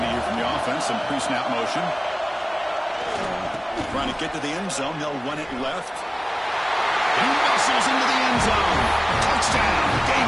here from the offense. Some pre-snap motion. Trying to get to the end zone. They'll run it left. He muscles into the end zone. Touchdown,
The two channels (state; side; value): identical; both; correlation 1.00